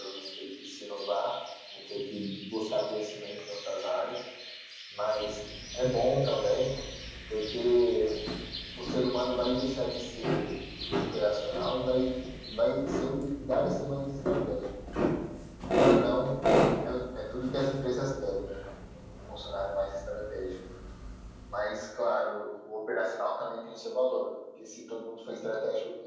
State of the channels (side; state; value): both; identical; correlation 1.00